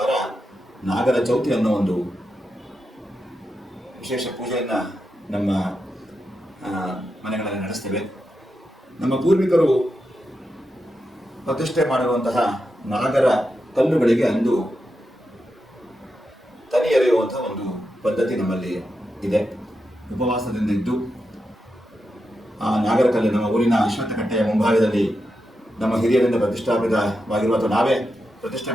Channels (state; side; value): normal; both; correlation 0.87